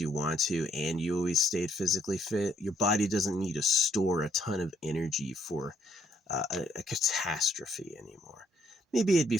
want to and you always stayed physically fit. Your body doesn't need to store a ton of energy for a catastrophe anymore. Maybe it'd be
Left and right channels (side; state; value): both; normal; correlation 0.70